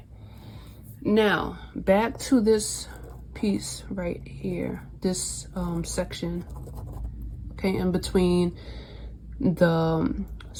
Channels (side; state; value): both; identical; correlation 1.00